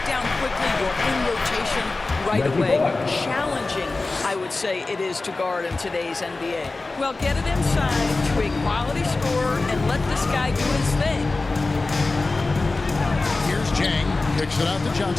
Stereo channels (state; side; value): quieter; right; 3.4 dB